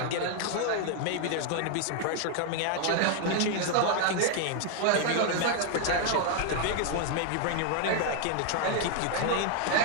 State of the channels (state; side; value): different; both; correlation 0.00